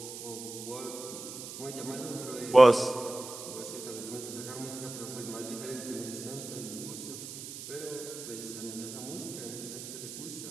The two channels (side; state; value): right; noise; hiss, 10 dB below the sound